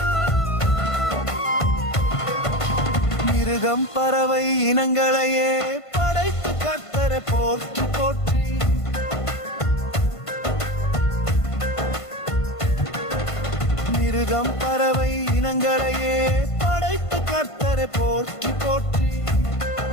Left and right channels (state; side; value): late; right; 1.5 ms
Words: மிருகம் பறவை இனங்களையே படைத்து கர்த்தரை போற்றி போற்றி. மிருகம் பறவை இனங்களையே படைத்து கர்த்தரை போற்றி போற்றி.